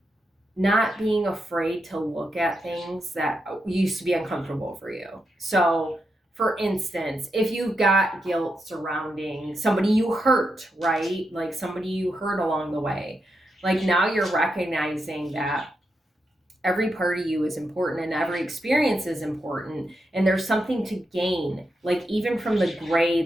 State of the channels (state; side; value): normal; both; correlation 0.85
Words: not being afraid to look at things that used to be uncomfortable for you. So for instance, if you've got guilt surrounding somebody you hurt, right? Like somebody you hurt along the way, like now you're recognizing that every part of you is important and every experience is important, and there's something to gain. Like even from the gray,